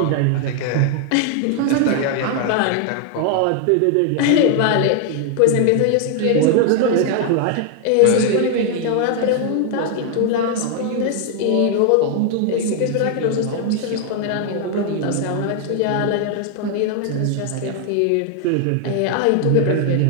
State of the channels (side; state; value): both; different; correlation 0.00